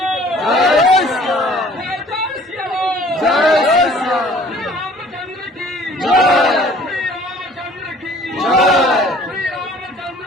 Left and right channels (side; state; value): both; normal; correlation 0.53